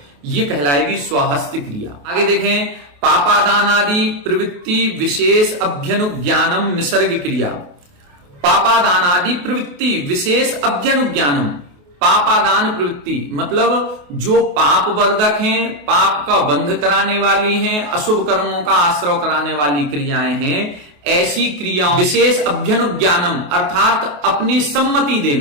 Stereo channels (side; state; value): left; late; 28 ms